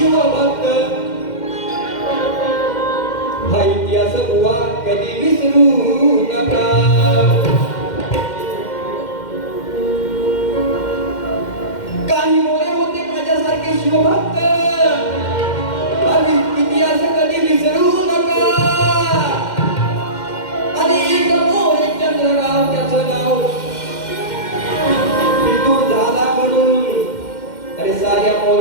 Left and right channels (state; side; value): late; right; 2.1 ms